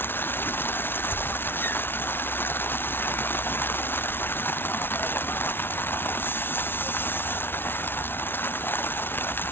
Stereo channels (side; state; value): right; late; 0.11 ms